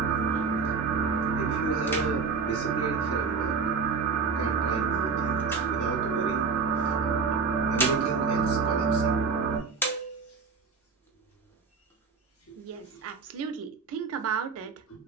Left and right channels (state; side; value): quieter; left; 5.0 dB